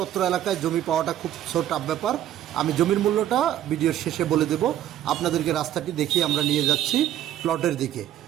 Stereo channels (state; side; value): quieter; left; 11.9 dB